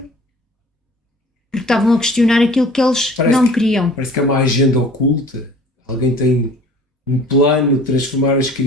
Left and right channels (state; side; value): normal; both; correlation 0.48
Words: estavam a questionar aquilo que eles não queriam. Parece que é uma agenda oculta. Alguém tem um plano de transformar as